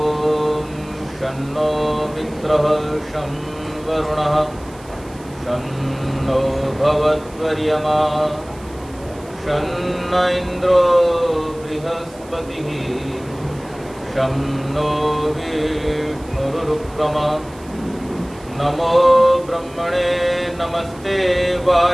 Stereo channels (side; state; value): right; noise; hiss, 24 dB below the sound